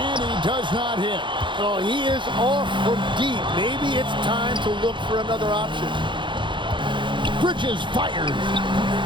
he does not hit. Oh, he is off from deep. Maybe it's time to look for another option. Bridges fires.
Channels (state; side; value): late; left; 0.23 ms